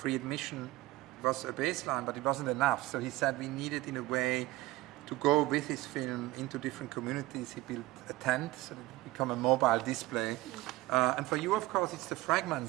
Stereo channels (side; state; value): left; quieter; 18.1 dB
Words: admission was a baseline, but it wasn't enough. So he said we needed, in a way, to go with his film into different communities. He built a tent, so that it became a mobile display. And for you, of course, it's the